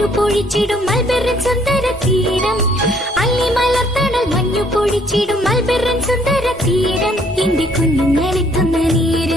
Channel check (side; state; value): both; normal; correlation 0.64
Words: പൊഴിച്ചിടും മൽബെറിൻ സുന്ദര തീരം. അല്ലി മലർത്തണൽ മഞ്ഞു പൊഴിച്ചിടും മൽബെറിൻ സുന്ദര തീരം. എന്റെ കുഞ്ഞുങ്ങളെത്തുന്ന